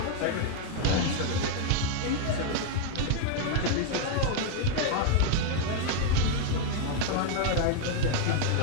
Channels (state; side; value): different; both; correlation 0.01